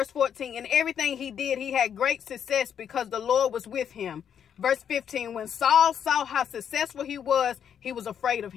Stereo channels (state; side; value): quieter; right; 8.4 dB